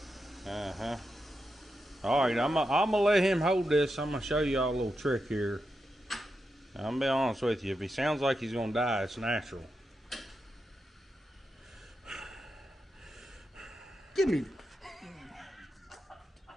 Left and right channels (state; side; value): normal; both; correlation 0.87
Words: Uh-huh. Alright, I'm gonna let him hold this. I'm gonna show y'all a little trick here. I'm gonna be honest with you. If he sounds like he's gonna die, it's natural. Give me.